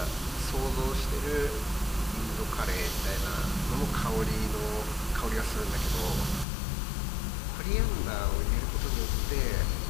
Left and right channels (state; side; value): drops out; right; at 6.5 s